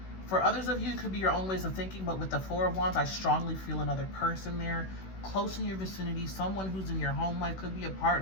For others of you, it could be your own ways of thinking, but with the 4 of Wands, I strongly feel another person there, close in your vicinity, someone who's in your home life. Could be a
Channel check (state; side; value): late; right; 16 ms